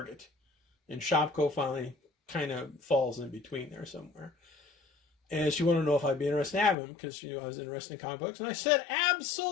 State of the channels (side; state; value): right; drops out; at 6.8 s